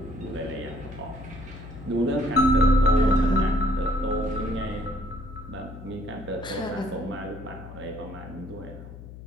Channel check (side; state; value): left; noise; hum, 14 dB below the sound